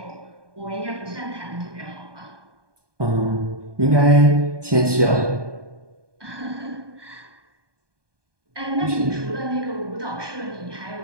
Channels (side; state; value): left; late; 1.2 ms